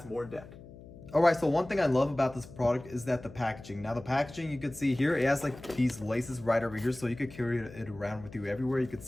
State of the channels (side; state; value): left; noise; hum, 17 dB below the sound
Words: more in depth. All right, so one thing I love about this product is that the packaging. Now the packaging, you can see here, it has like these laces right over here, so you could carry it around with you everywhere. You can